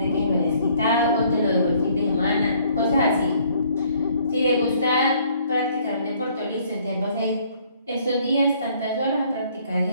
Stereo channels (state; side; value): inverted; both; correlation -0.62